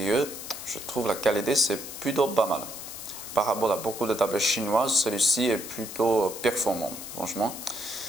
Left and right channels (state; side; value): noise; left; hiss, 10 dB below the sound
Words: Je trouve la qualité c'est plutôt pas mal. Par rapport à beaucoup de tablettes chinoises, celui-ci est plutôt performant, franchement.